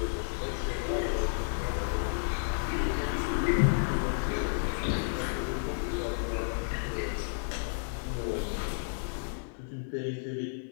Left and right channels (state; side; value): silent; right; digital silence